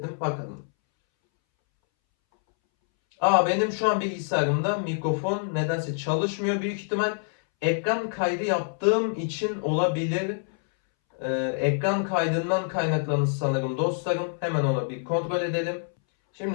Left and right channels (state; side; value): silent; right; 61 dB below the other